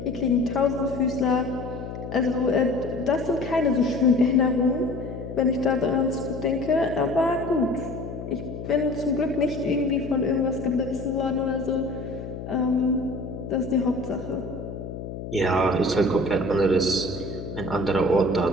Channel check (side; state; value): left; noise; hum, 9 dB below the sound